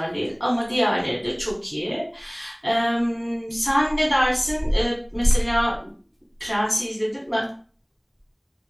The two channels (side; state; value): both; identical; correlation 1.00